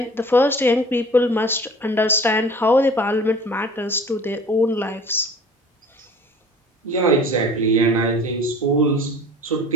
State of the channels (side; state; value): both; normal; correlation 0.45